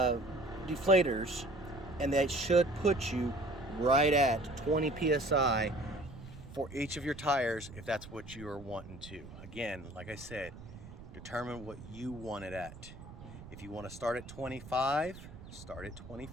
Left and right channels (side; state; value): right; noise; rumble, 15 dB below the sound